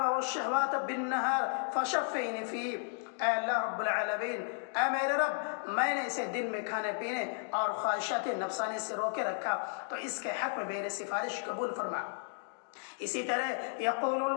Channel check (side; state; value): right; silent; digital silence